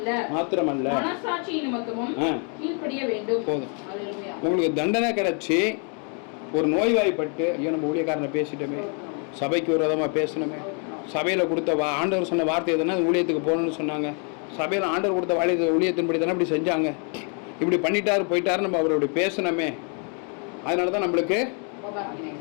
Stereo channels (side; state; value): right; quieter; 39.8 dB